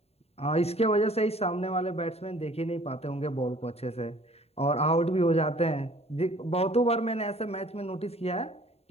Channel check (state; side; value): late; right; 0.30 ms